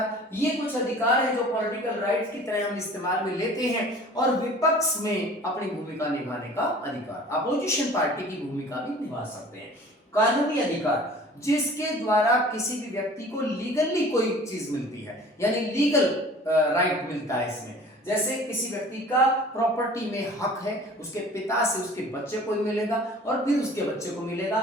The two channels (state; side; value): normal; both; correlation 0.46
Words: ये कुछ अधिकार हैं जो पॉलिटिकल राइट्स की तरह हम इस्तेमाल में लेते हैं। और विपक्ष में अपनी भूमिका निभाने का अधिकार, अपोजिशन पार्टी की भूमिका भी निभा सकते हैं। कानूनी अधिकार जिसके द्वारा किसी भी व्यक्ति को लीगली कोई चीज मिलती है, यानी लीगल राइट मिलता है इसमें। जैसे किसी व्यक्ति का प्रॉपर्टी में हक है, उसके पिता से उसके बच्चे को मिलेगा और फिर उसके बच्चे को